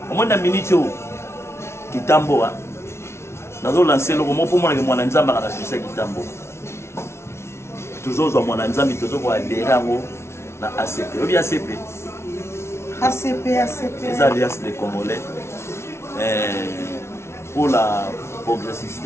omona minute kitambo nazo lancer loko mo pomona ke mwana nzamba kana succès kitambo tozozwa mwana nzambi tozoko adhérer yango na ACP obi ACP les alliances des Congolais pour la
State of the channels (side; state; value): right; late; 0.13 ms